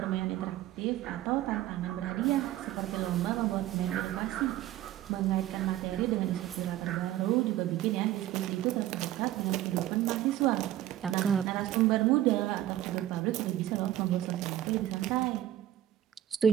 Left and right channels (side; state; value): left; quieter; 13.2 dB